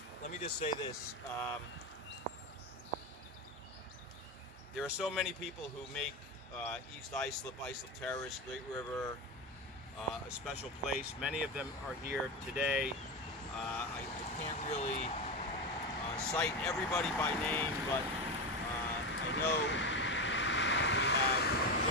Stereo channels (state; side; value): normal; both; correlation 0.18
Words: let me just say this. There are so many people who make East Islip, Islip Terrace, Great River a special place. Many of them are here today. I can't really cite everybody by name, but I know we have